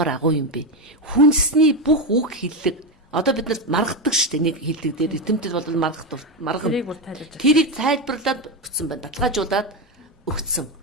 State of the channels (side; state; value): both; normal; correlation 0.11